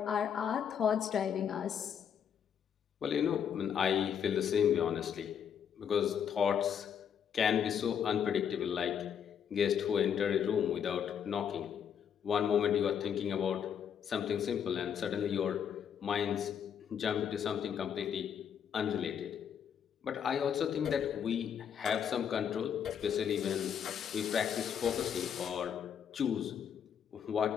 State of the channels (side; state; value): right; quieter; 8.2 dB